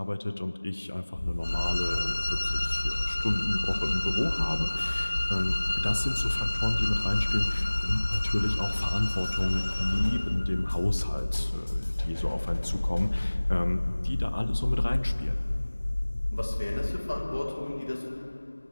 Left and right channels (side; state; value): both; inverted; correlation -1.00